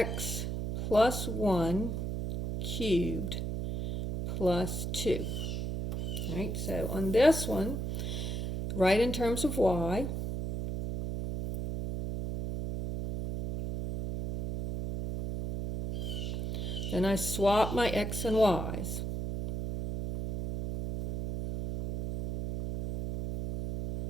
plus 1 cubed plus 2. All right, so on this one, write in terms of y. Then I swap my x and y's.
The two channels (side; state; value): right; noise; hum, 2 dB below the sound